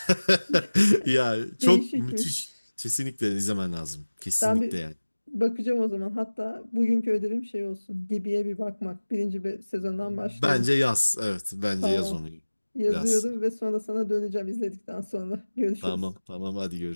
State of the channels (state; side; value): inverted; both; correlation -1.00